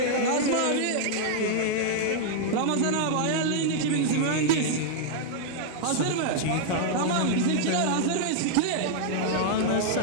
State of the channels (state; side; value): different; both; correlation -0.01